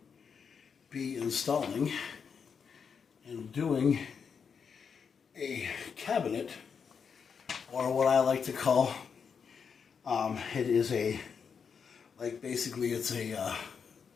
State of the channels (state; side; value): quieter; right; 6.4 dB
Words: be installing and doing a cabinet, or what I like to call, it is a, like, basically it's a